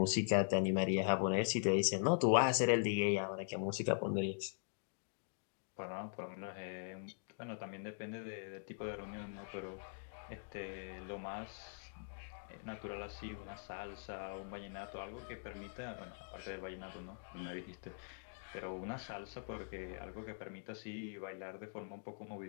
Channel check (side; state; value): right; silent; digital silence